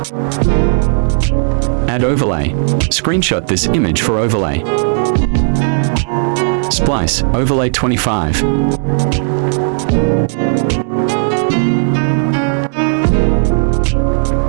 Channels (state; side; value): silent; left; digital silence